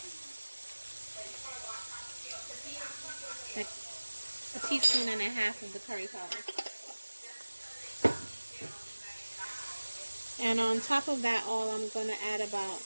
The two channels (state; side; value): inverted; both; correlation -1.00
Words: like a teaspoon and a half of the curry powder. And on top of that all, I'm going to add about